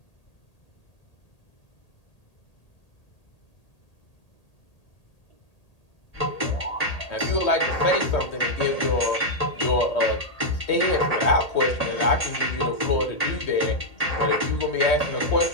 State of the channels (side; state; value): right; late; 1.8 ms